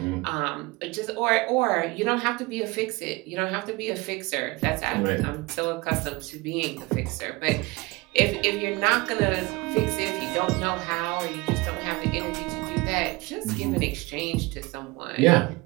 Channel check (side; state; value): left; quieter; 23.7 dB